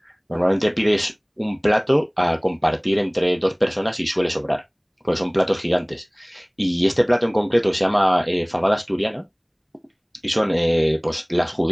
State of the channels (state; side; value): identical; both; correlation 1.00